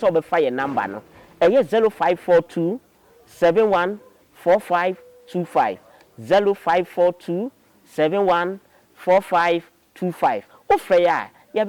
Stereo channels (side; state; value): both; identical; correlation 1.00